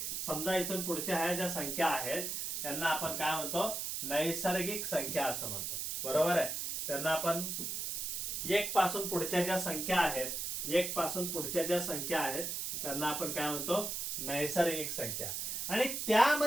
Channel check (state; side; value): noise; right; hiss, 3 dB below the sound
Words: समजा इथून पुढच्या ह्या ज्या संख्या आहेत त्यांना आपण काय म्हणतो? नैसर्गिक संख्या असं म्हणतो। बरोबर आहे? त्यांना आपण 1 पासून पुढच्या ज्या संख्या आहेत, 1 पासून पुढच्या ज्या संख्या आहेत त्यांना आपण काय म्हणतो? नैसर्गिक संख्या। आणि